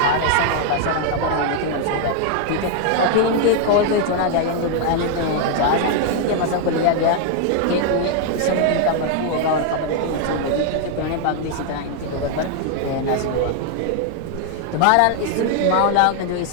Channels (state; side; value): different; both; correlation 0.00